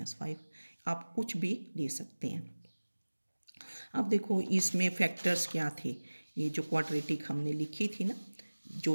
आप कुछ भी ले सकते हैं। अब देखो इसमें फैक्टर्स क्या थे, ये जो क्वाड्रेटिक हमने लिखी थी ना, जो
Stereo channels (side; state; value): both; inverted; correlation -1.00